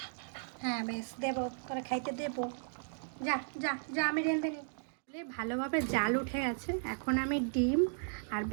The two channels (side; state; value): left; silent; digital silence